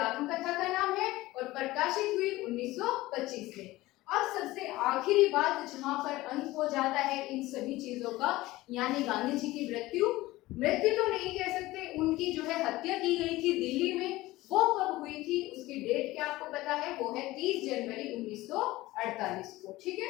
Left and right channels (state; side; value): quieter; right; 18.3 dB